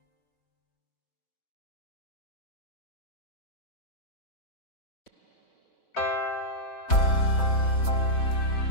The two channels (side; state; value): right; late; 4.1 ms